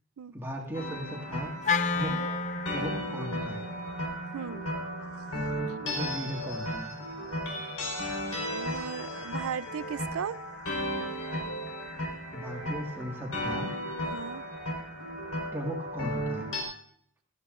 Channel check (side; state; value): both; normal; correlation 0.17